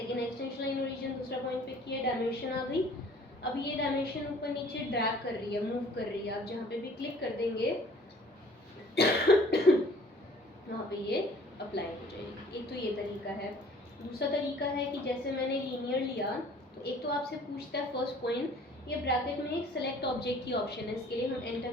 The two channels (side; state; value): both; normal; correlation 0.52